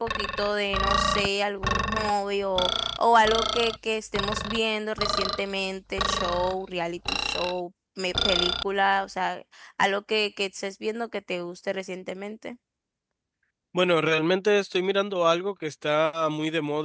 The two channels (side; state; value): both; identical; correlation 1.00